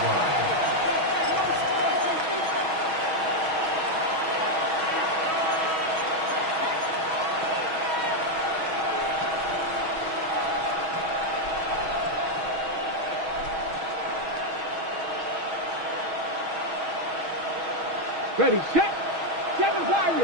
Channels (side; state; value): left; late; 6.2 ms